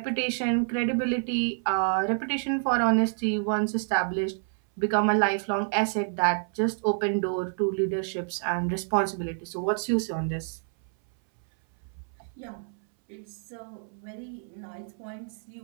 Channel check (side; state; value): left; silent; 59 dB below the other